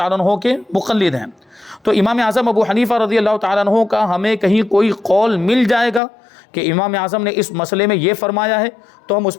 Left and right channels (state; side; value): drops out; right; at 6.0 s